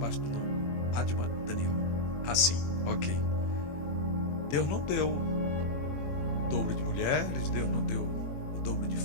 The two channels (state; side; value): late; right; 21 ms